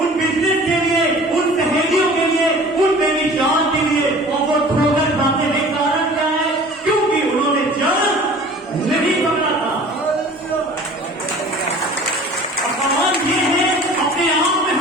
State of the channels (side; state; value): both; normal; correlation 0.45